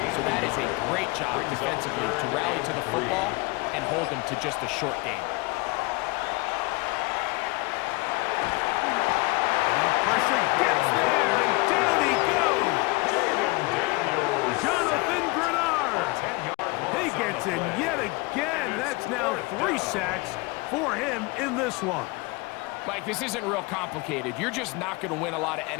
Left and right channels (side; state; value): right; quieter; 24.8 dB